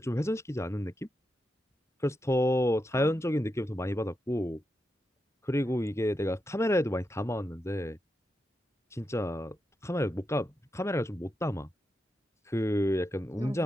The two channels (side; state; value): both; normal; correlation 0.86